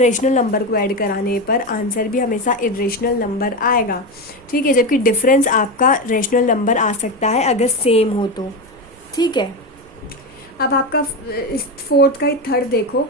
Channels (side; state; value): right; noise; rumble, 26 dB below the sound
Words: नंबर को ऐड कराने पर आंसर भी हमेशा इरेशनल नंबर आएगा। ठीक है, जबकि डिफरेंस आपका रैशनल नंबर आ सकता है अगर सेम हो तो। ठीक है, अब आपका फोर्थ का ही थर्ड देखो,